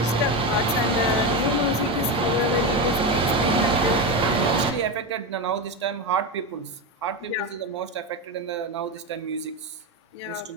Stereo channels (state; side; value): normal; both; correlation 0.16